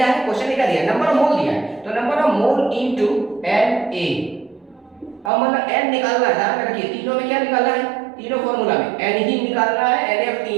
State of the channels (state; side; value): drops out; left; at 5.3 s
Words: है, क्वेश्चन में क्या दिया है? नंबर ऑफ मोल दिया है, तो number of mole into Na। अब मतलब n निकालना है, ध्यान में रखिए तीनों में क्या निकालना है? तीनों फॉर्मूला में n ही निकालना है, Na